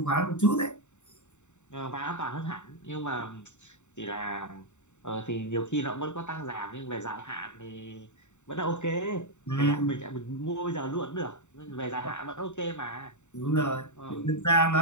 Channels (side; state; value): right; late; 0.84 ms